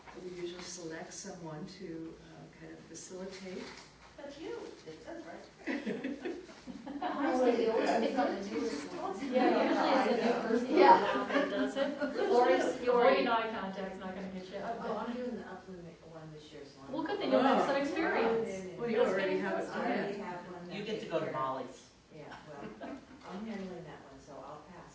we usually select someone to kind of facilitate. That's you. It says right. Honestly, they always pick on the newest ones. Yeah, usually it's a new person. Yeah. That does it. Lori's Lori eye contact's not gonna get you. Oh, I'm doing the upland one this year, so I'm. Well, good thing you'll have some experience. Well, you already have it I planned. already have one. You get to go to Molly's. Yeah, well, I'm handling that one, so I'll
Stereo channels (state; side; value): identical; both; correlation 1.00